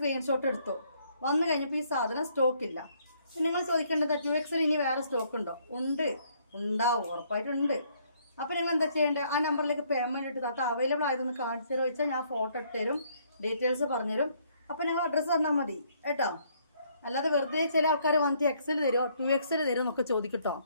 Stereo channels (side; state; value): both; inverted; correlation -0.67